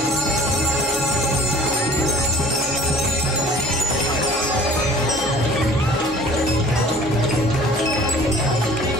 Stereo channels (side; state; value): both; normal; correlation 0.48